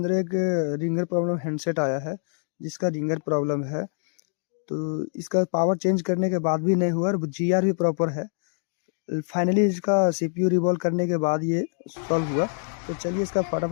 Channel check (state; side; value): silent; right; digital silence